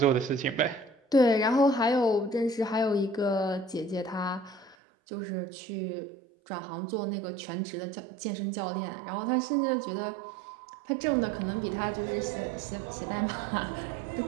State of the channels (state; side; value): drops out; left; at 4.8 s